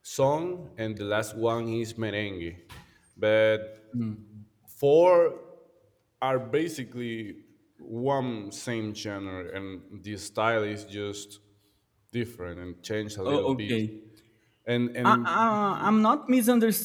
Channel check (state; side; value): identical; both; correlation 1.00